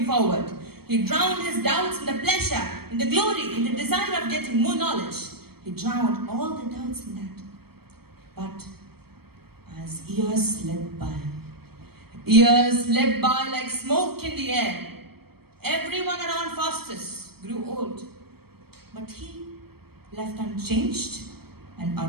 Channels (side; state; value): left; late; 0.96 ms